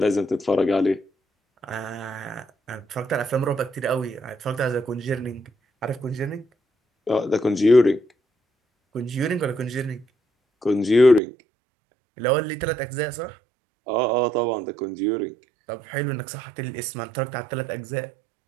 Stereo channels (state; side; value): drops out; left; at 11.2 s